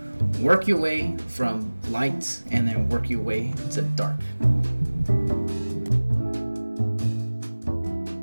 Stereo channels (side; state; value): both; inverted; correlation -1.00